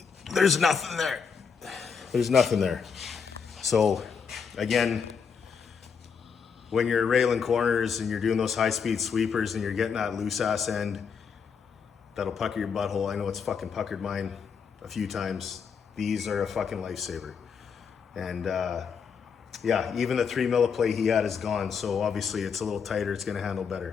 there's nothing there. There's nothing there. So again, when you're railing corners and you're doing those high-speed sweepers and you're getting that loose-ass end that'll pucker your butthole. I know it's fucking puckered mine a few times. These are a fucking lifesaver. And yeah, even the 3 mm plate he had is gone, so obviously it's a little tighter, it's gonna handle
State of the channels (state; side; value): quieter; right; 6.2 dB